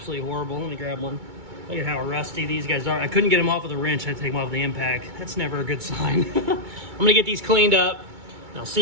horrible. Let me grab one. Look at how rusty these guys are. I couldn't get them off with a wrench. I had to take them off with the impact. That's never a good sign. I'm going to get these cleaned up. And I'll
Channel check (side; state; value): left; late; 2.2 ms